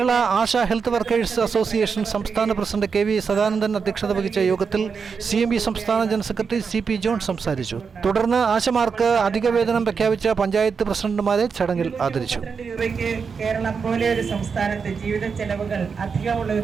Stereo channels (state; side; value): quieter; left; 5.7 dB